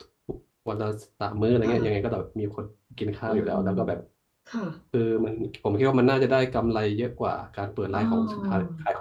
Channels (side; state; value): both; identical; correlation 1.00